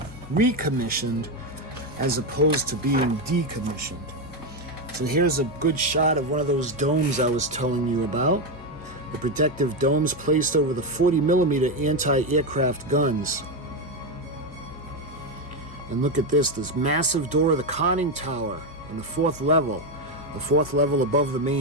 recommissioned as opposed to being decommissioned. So here's a good shot of one of those domes I was telling you about. The protective domes placed over the 40mm anti-aircraft guns. And look at this massive door of the conning tower on the 4th level. The 4th level above the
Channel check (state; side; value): noise; left; hum, 20 dB below the sound